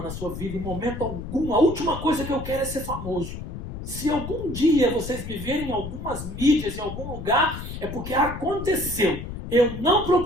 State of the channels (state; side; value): noise; left; rumble, 8 dB below the sound